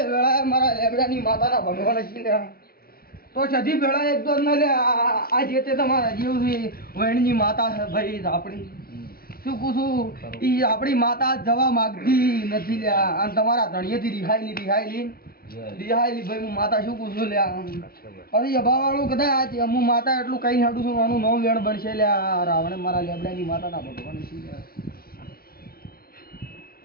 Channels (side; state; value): right; late; 0.44 ms